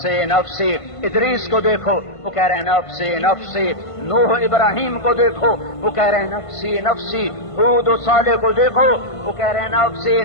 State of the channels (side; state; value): right; late; 1.5 ms